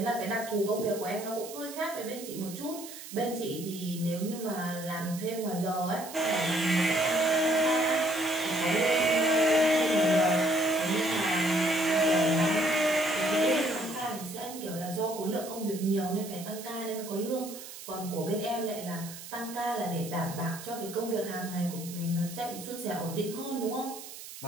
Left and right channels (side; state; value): right; noise; hiss, 13 dB below the sound